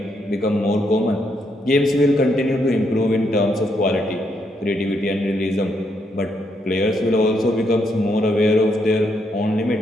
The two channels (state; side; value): normal; both; correlation 0.77